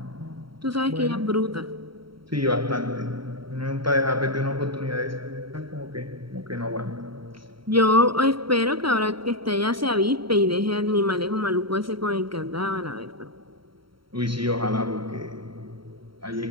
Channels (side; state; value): left; late; 0.74 ms